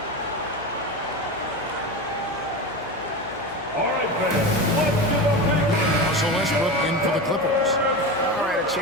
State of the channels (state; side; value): noise; left; hum, 24 dB below the sound